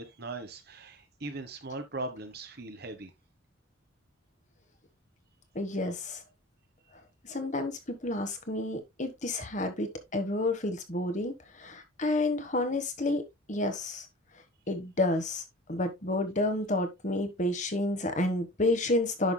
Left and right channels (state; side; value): normal; both; correlation 0.40